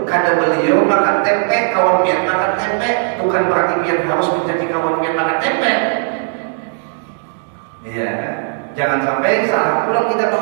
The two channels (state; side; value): silent; left; 63 dB below the other